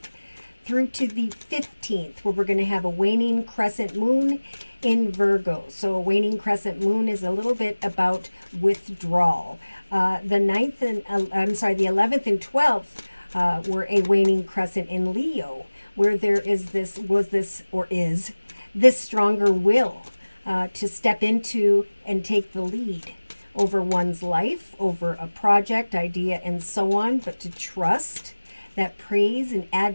through to the 15th, where we're going to have a waning crescent moon in Virgo. So a waning crescent moon is a little bit about withdrawal. The 11th and 12th were a waning crescent in Leo, where there is this stronger will to step into and take the lead over one's life, over a project, idea, and so on, but to trust that praise and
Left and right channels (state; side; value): inverted; both; correlation -1.00